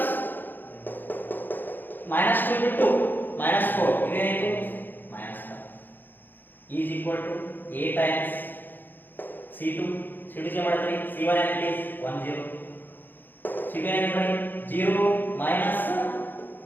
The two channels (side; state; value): right; late; 0.091 ms